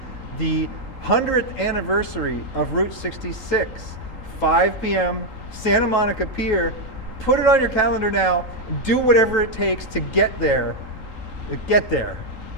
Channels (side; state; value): left; late; 3.8 ms